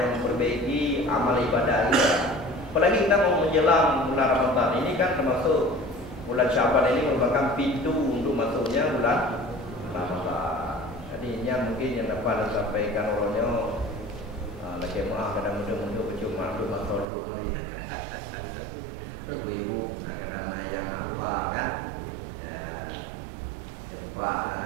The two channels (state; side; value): drops out; left; at 17.1 s